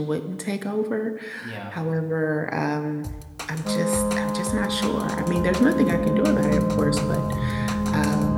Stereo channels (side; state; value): both; identical; correlation 1.00